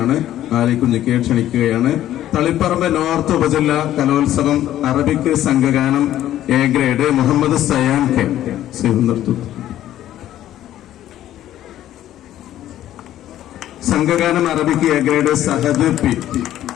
ആലിക്കുഞ്ഞിക്കയെ ക്ഷണിക്കുകയാണ്. തളിപ്പറമ്പ് നോർത്ത് ഉപജില്ല കലോത്സവം അറബിക് സംഘഗാനം A grade Muhammad Sayan K. സംഘഗാനം Arabic A grade Sahad P.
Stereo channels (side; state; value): right; quieter; 12.6 dB